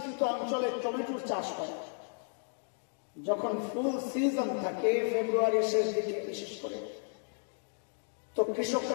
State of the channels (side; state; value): right; silent; 55 dB below the other